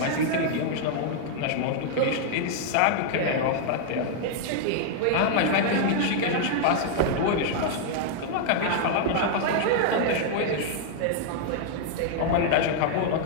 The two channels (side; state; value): both; different; correlation -0.01